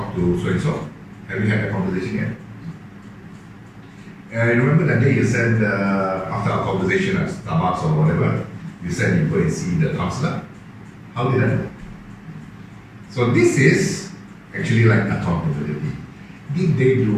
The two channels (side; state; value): both; identical; correlation 1.00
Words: to so-and-so? Have you had that conversation yet? I remember that day you said, after our conversation at Starbucks or whatever, you said you go and see the counselor. How did that go? So this is actually like accountability. Did they do